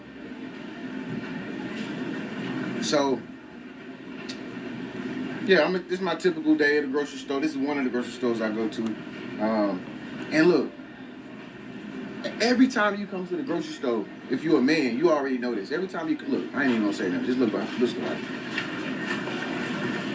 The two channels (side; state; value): both; identical; correlation 1.00